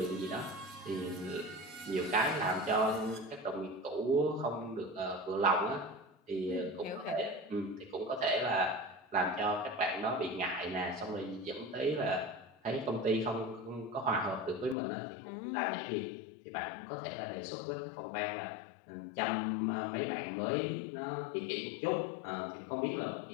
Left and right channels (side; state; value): right; drops out; at 14.8 s